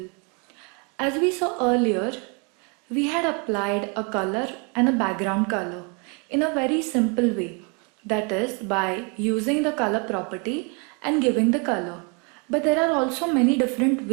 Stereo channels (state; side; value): quieter; left; 34.1 dB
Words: As we saw earlier, we had applied a color and a background color in a very simple way, that is by using the color property and giving the color. But there are also many different